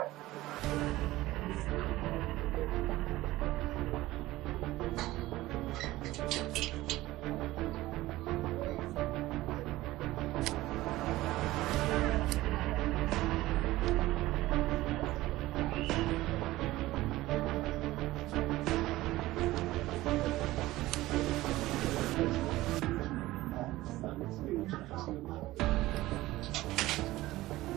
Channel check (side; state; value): left; quieter; 17.4 dB